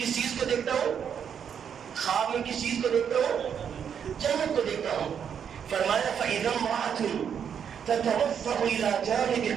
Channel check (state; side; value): quieter; left; 7.9 dB